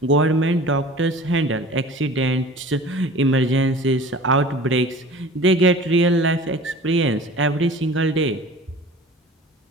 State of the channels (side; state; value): both; normal; correlation 0.42